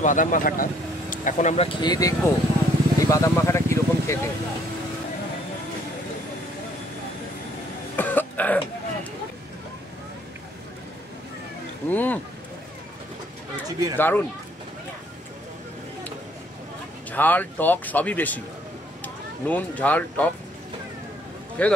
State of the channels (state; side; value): normal; both; correlation 0.64